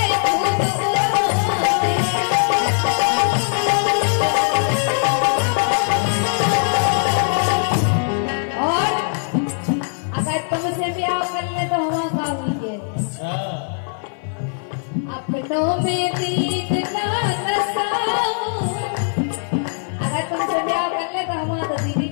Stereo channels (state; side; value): silent; right; 56 dB below the other